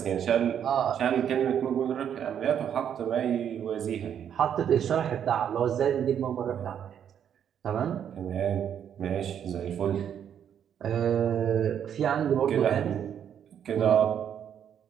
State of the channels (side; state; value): left; quieter; 8.9 dB